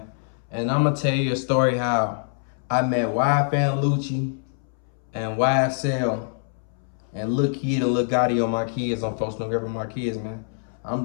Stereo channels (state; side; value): silent; right; 62 dB below the other